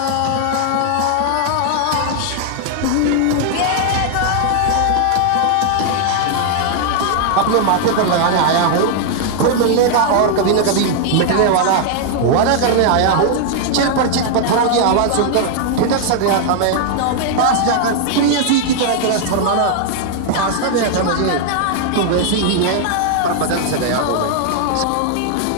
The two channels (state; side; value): different; both; correlation 0.00